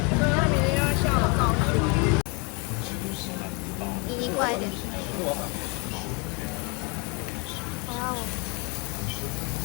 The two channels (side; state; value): right; quieter; 31.9 dB